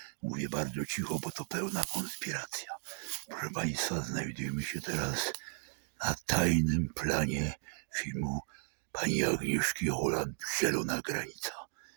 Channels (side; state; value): left; silent; 54 dB below the other